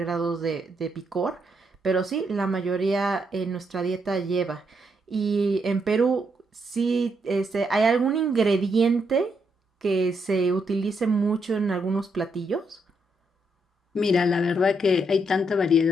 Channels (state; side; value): normal; both; correlation 0.78